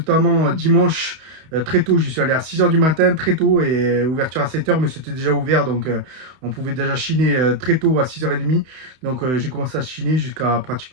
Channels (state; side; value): late; left; 31 ms